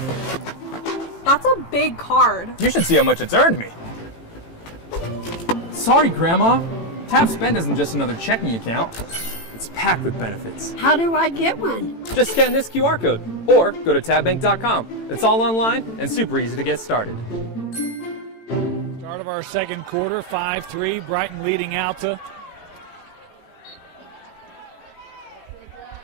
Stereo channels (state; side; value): late; right; 18 ms